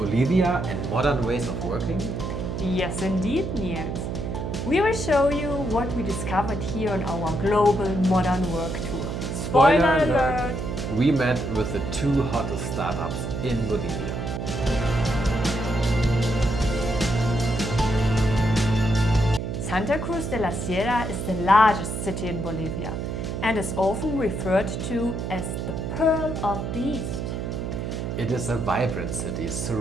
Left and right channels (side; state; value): right; noise; hum, 4 dB below the sound